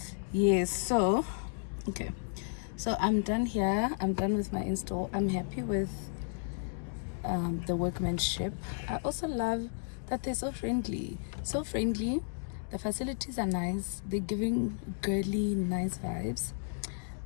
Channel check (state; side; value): silent; right; digital silence